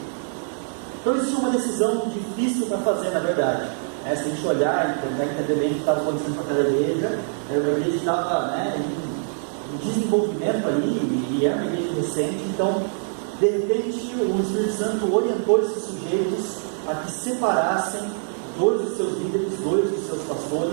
Então existia uma decisão difícil para fazer, na verdade. Se a gente olhar e tentar entender bem o que estava acontecendo com aquela igreja, era uma igreja que estava, né, em desenvolvimento ali, e era uma igreja recente. Então, de repente, o Espírito Santo orientou esses sujeitos a que separassem dois dos seus líderes, dois dos seus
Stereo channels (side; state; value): left; silent; digital silence